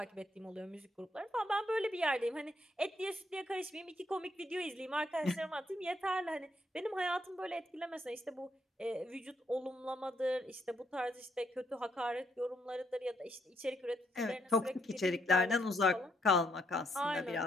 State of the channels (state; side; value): normal; both; correlation 0.74